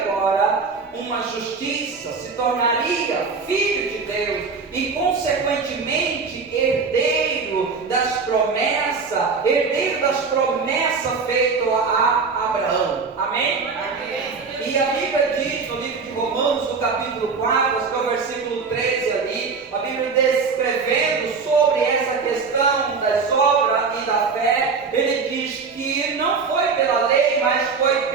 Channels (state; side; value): quieter; left; 5.0 dB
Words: uma justiça, se tornaria filho de Deus e consequentemente herdeiro das promessas feitas a Abraão. Amém? E a Bíblia diz no livro de Romanos, no capítulo 4, acho que é o versículo 13 ali, a Bíblia descrevendo sobre essa questão das obras e da fé, ele diz que não foi pela lei, mas foi